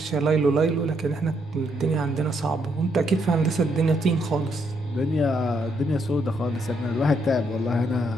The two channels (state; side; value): normal; both; correlation 0.75